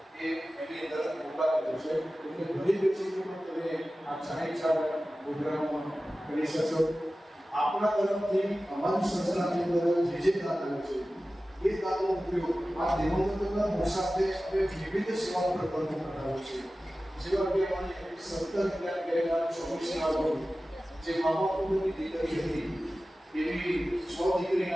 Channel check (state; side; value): normal; both; correlation 0.96